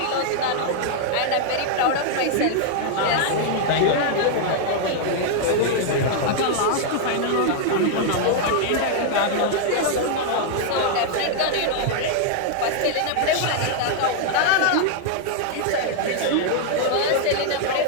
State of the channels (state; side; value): different; both; correlation -0.01